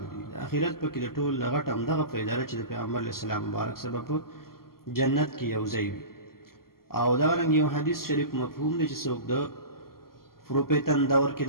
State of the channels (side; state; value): right; late; 0.92 ms